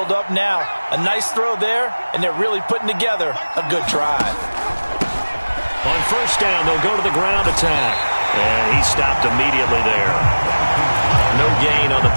up now. A nice throw there, and they're really putting together a good drive. On first down, they'll go to the ground attack. And he stopped immediately there. No gain on the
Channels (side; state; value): both; inverted; correlation -1.00